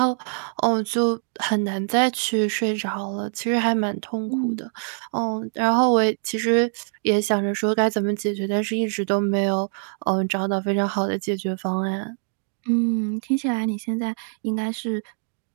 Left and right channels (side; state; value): left; silent; 56 dB below the other